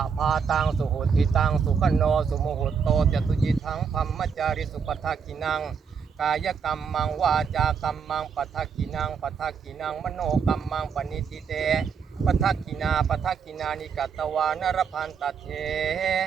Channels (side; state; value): left; quieter; 6.4 dB